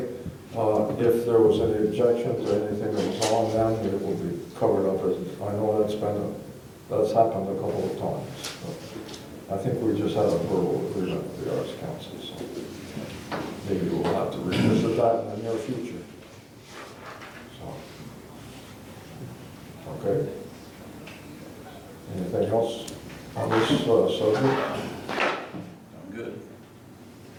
if there was any objections or anything that was on them, it will be covered up. I know that's happened a couple of times. So I think we just had a verbal agreement with the Arts Council, so maybe we'll have to revisit that in the near future. So, okay. Anything else on this subject? I'm good.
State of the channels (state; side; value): identical; both; correlation 1.00